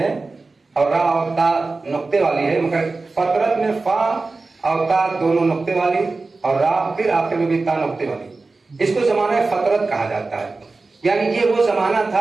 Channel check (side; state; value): left; quieter; 3.7 dB